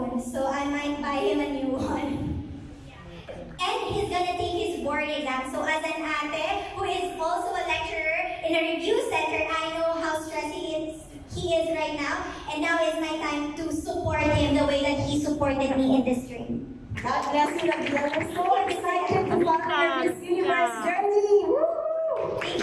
so I might buy him a new one. And he's gonna take his board exam. So as an ate who is also a lecturer in a review center, I know how stressed he is right now. And now is my time to support him the way that he supported me in this dream. God bless you, Rabiya. We're so excited to follow your Miss Universe journey. Woo! Thank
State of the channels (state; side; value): identical; both; correlation 1.00